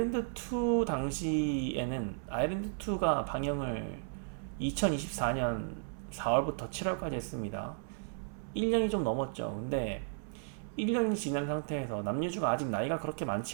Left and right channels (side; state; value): left; silent; 55 dB below the other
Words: 당시에는 아일랜드2가 방영을 2024년 4월부터 7월까지 했습니다. 1년이 좀 넘었죠. 근데 1년이 지난 상태에서 남유주가 아직 나이가 그렇게